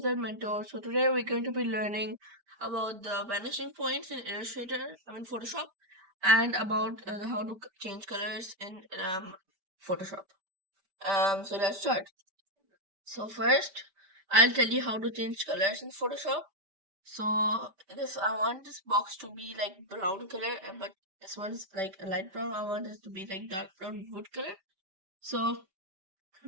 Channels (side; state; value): left; late; 5.1 ms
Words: Mentor. So today we're going to be learning about the vanishing points in Illustrator, Photoshop, and about how to change colors in Photoshop. So let's start. So first, I'll tell you how to change colors in Photoshop. So this I want this box to be like brown color, but this one's like a light brown. I want this to be like dark brown wood color. So